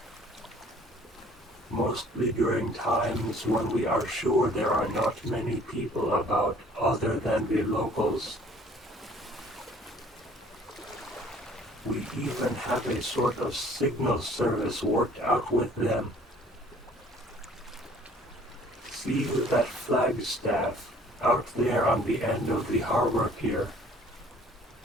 Mostly during times when we are sure there are not many people about other than the locals. We even have a sort of signal service worked out with them. See that flagstaff out there on the end of the harbor pier?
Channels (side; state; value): both; normal; correlation 0.55